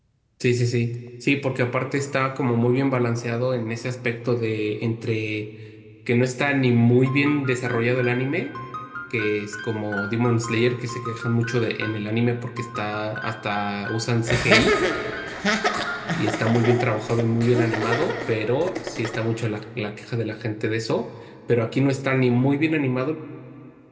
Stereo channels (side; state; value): both; identical; correlation 1.00